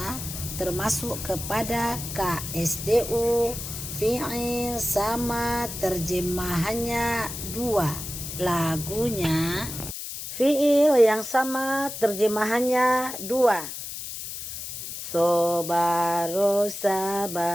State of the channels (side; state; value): left; noise; hiss, 8 dB below the sound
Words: termasuk kepada KSDU, fi'il sama terjemahannya 2. Lagunya fi'il yang sama terjemahannya 2. Sobaro